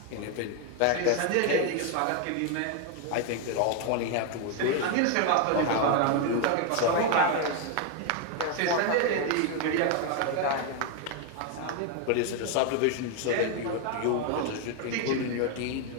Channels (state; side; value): different; both; correlation 0.01